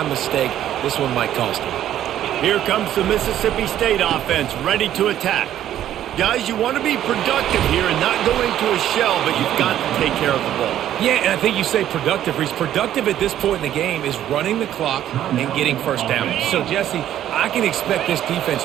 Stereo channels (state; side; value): quieter; left; 11.6 dB